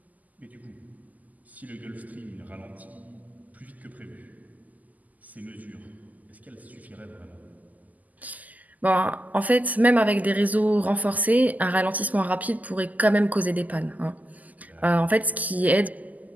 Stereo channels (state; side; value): late; left; 0.079 ms